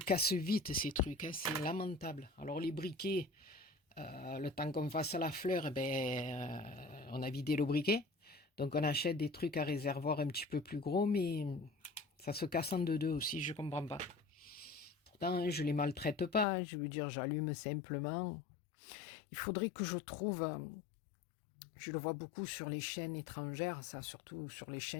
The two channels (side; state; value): right; drops out; at 16.4 s